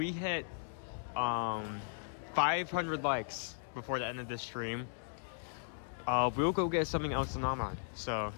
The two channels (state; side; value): silent; right; digital silence